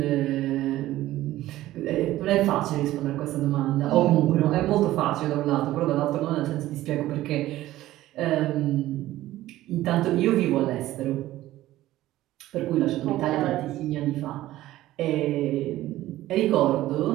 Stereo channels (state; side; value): quieter; left; 15.3 dB